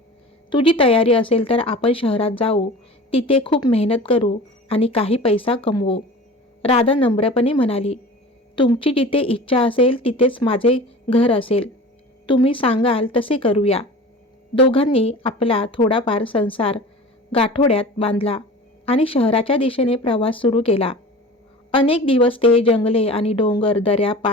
तुझी तयारी असेल तर आपण शहरात जाऊ, तिथे खूप मेहनत करू आणि काही पैसा कमवू. राधा नम्रपणे म्हणाली, तुमची जिथे इच्छा असेल तिथेच माझे घर असेल. तुम्ही सांगाल तसे करूया. दोघांनी आपला थोडाफार संसार गाठोड्यात बांधला आणि शहराच्या दिशेने प्रवास सुरू केला. अनेक दिवस ते जंगले आणि डोंगर दऱ्या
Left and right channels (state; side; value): normal; both; correlation 0.38